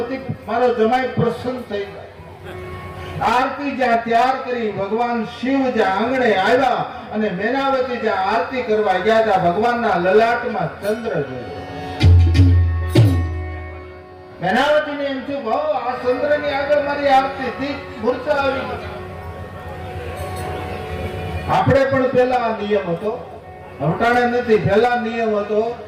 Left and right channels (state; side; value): identical; both; correlation 1.00